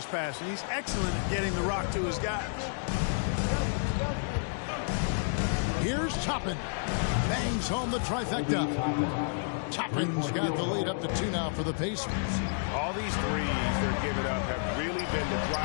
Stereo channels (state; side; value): silent; right; digital silence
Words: passing. He's excellent at getting the rock to his guys. Here's Toppin. Bangs home the trifecta. Toppin's got the lead up to 2 now for the Pacers. All these threes they're giving up have really been the